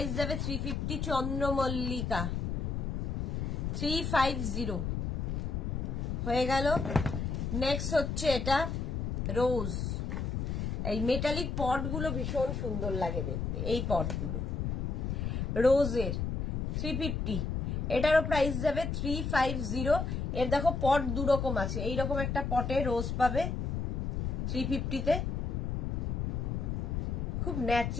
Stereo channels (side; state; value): left; noise; rumble, 1 dB below the sound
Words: যাবে 350। চন্দ্রমল্লিকা 350 হয়ে গেল। নেক্সট হচ্ছে এটা রোজ। এই মেটালিক পটগুলো ভীষণ সুন্দর লাগে দেখতে, এই পটগুলো রোজের 350। এটারও প্রাইস যাবে 350। এর দেখো পট দুরকম আছে, এইরকম একটা পটে রোজ পাবে 350-তে, খুব